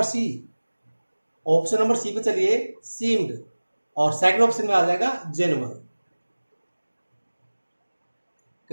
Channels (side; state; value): both; inverted; correlation -1.00